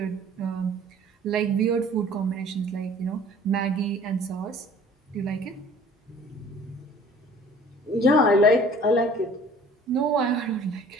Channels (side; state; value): both; normal; correlation 0.50